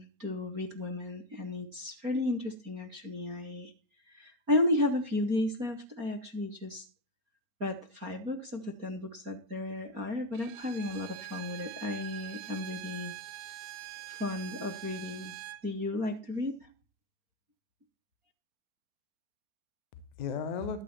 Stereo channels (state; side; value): late; left; 4.3 ms